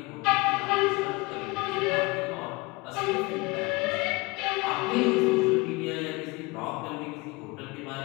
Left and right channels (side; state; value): right; quieter; 24.5 dB